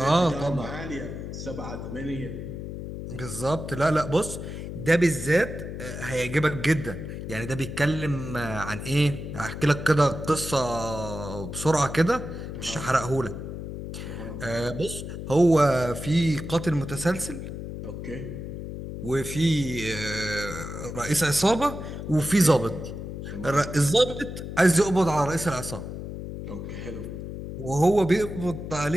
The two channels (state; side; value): noise; left; hum, 8 dB below the sound